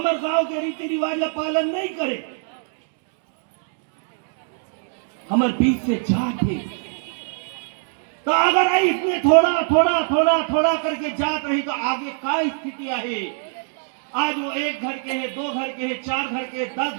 गांव के रीति रिवाज का पालन नहीं करे। हमारे बीच से जात है, तो अगर इसमें थोड़ा थोड़ा थोड़ा थोड़ा करके जात रही तो आगे क्या स्थिति है। आज वो 1 घर के है, 2 घर के है, 4 घर के, 10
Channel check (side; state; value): left; silent; 62 dB below the other